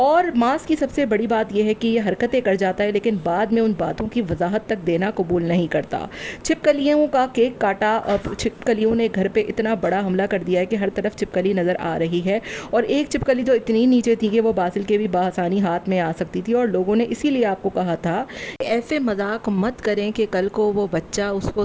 मास की सबसे बड़ी बात यह है कि ये हरकतें कर जाता है, लेकिन बाद में उन बातों की वजाहत तक देना कबूल नहीं करता। छिपकलियों का केक काटा और छिपकलियों ने घर पे इतना बड़ा हमला कर दिया है कि हर तरफ छिपकली नज़र आ रही है, और एक छिपकली तो इतनी नीचे थी कि वो बासिल के भी बआसानी हाथ में आ सकती थी। और लोगों ने इसीलिए आपको कहा था कि ऐसे मजाक मत करें कि कल को वो बच्चा उसको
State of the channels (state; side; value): identical; both; correlation 1.00